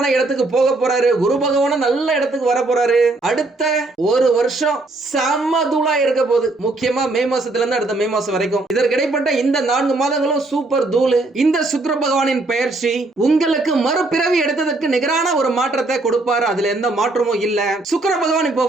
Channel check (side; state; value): left; quieter; 3.0 dB